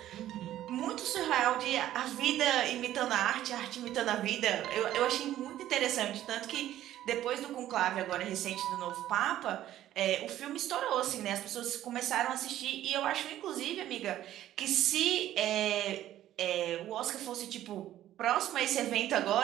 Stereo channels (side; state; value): left; quieter; 13.0 dB